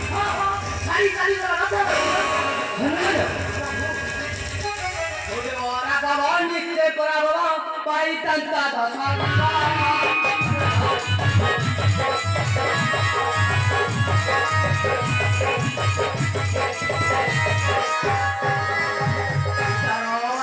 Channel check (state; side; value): identical; both; correlation 1.00